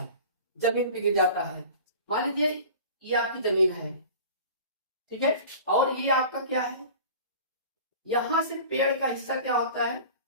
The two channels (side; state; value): both; inverted; correlation -0.40